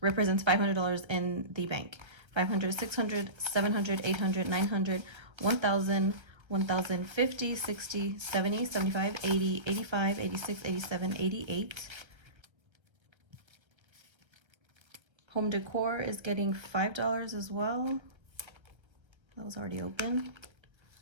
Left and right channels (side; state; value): left; late; 1.3 ms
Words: $500 in the bank. 500, 600, 700, 800, 900, 1,000, 1,050, 60, 70, 75, 80, 85, 86, 87, 88. Home decor is getting $5 as well. That was already open.